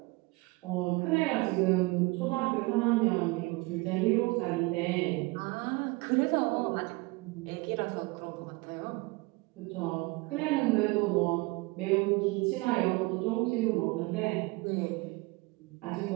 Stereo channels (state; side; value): quieter; left; 24.5 dB